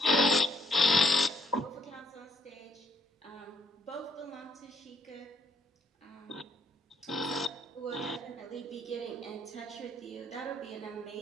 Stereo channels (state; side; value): normal; both; correlation 0.68